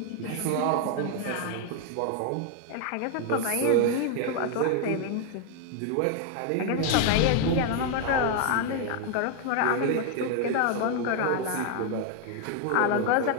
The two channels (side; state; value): both; different; correlation 0.01